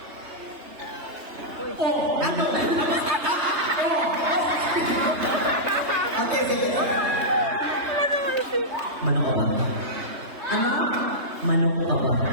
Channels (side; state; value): left; late; 3.3 ms